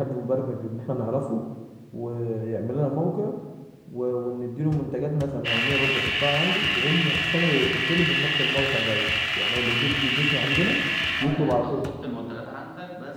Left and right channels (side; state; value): both; identical; correlation 1.00